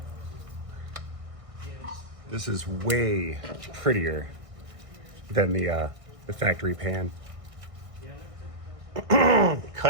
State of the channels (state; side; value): late; left; 1.6 ms